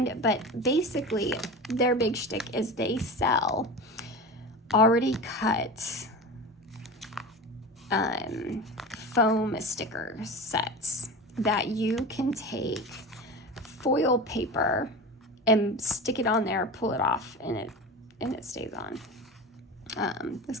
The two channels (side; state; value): both; normal; correlation 0.29